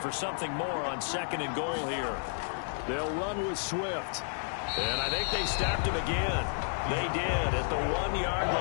for something more on 2nd and goal here. They'll run with Swift. And I think they stopped him again. They did at the 1-yard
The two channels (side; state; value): right; silent; 57 dB below the other